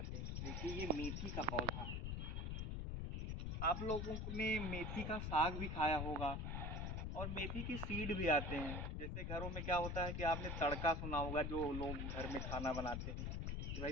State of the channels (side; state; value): left; noise; rumble, 2 dB below the sound